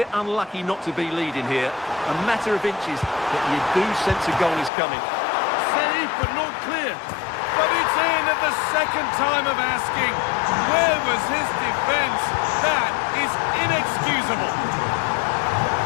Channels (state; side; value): drops out; right; at 4.7 s